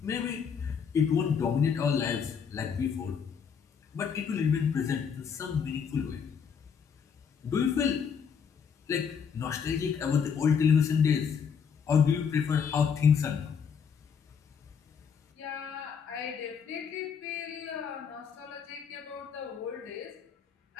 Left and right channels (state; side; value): quieter; right; 6.8 dB